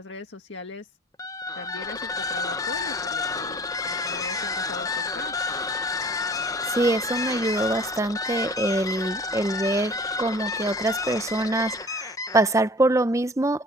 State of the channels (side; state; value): both; normal; correlation 0.47